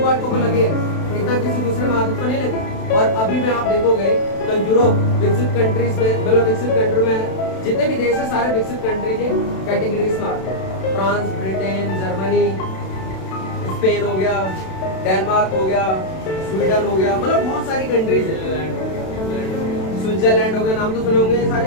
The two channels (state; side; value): late; right; 32 ms